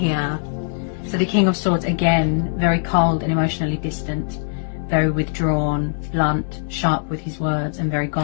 So the King of Swords, again, very cold and emotionally distant, very withdrawn, blunt, sharp with his words, and very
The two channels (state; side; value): silent; right; 65 dB below the other